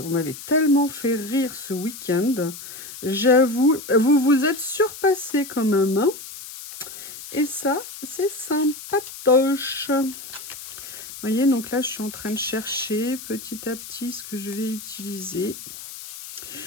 m'avez tellement fait rire ce week-end. J'avoue, vous vous êtes surpassé quand même. Hein, et ça, c'est sympatoche. Vous voyez, donc là, je suis en train de chercher petit à petit ce que je vais utiliser.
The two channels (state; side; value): noise; left; hiss, 12 dB below the sound